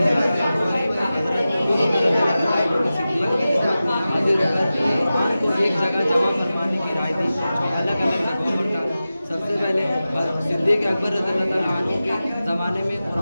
एक जगह जमा फरमाने की राय दी जो अलग अलग जगहों पर था। सबसे पहले सिद्दीक़ अकबर रज़ियल्लाहु अन्हु के ज़माने में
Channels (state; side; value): inverted; both; correlation -0.94